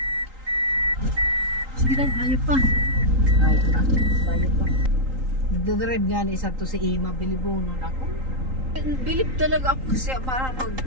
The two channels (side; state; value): left; late; 3.8 ms